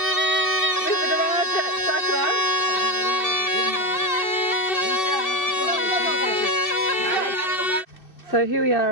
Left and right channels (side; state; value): right; late; 2.6 ms